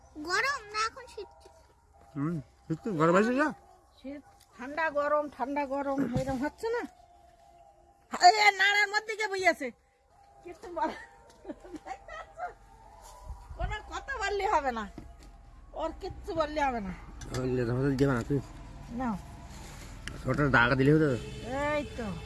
গরম না, এখন শীত। শীত তো গরম আছে না, শীত ঠান্ডা গরম, ঠান্ডা গরম এরকম হচ্ছে না। নাড়ার মধ্যে কে বইয়াছে, কিছু কোনো কথা বললে হবে না, ওর কিচ্ছু বললে হবে না। দেবে না তুই না, ছোট দাগা দিলে হতো। এই তো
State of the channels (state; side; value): identical; both; correlation 1.00